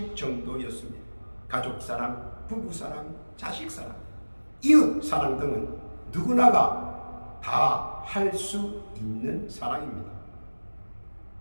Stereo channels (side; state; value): both; inverted; correlation -1.00